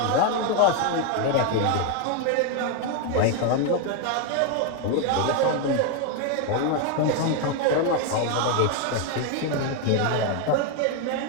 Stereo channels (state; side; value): different; both; correlation 0.01